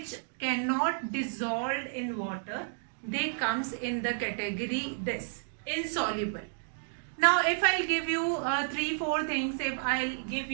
cannot dissolve in water, they comes in the category this, insoluble. Now if I'll give you 3-4 things, if I'll give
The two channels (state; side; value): silent; left; digital silence